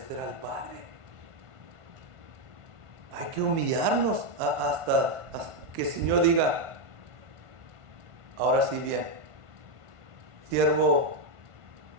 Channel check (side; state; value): left; late; 1.5 ms